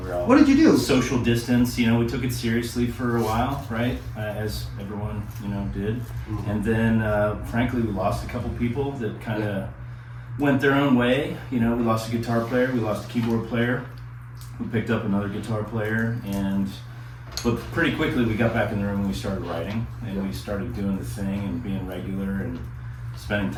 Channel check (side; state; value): both; identical; correlation 1.00